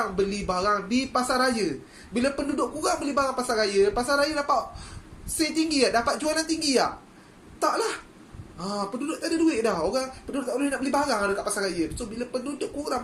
beli barang di pasar raya. Bila penduduk kurang beli barang pasar raya dapat sale tinggi tak? Dapat jualan tinggi tak? Taklah. Penduduk tak ada duit dah. Penduduk tak boleh nak beli barang dekat pasar raya. So bila penduduk kurang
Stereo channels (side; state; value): both; identical; correlation 1.00